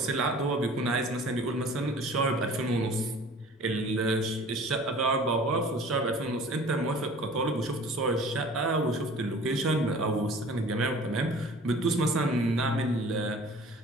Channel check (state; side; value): normal; both; correlation 0.46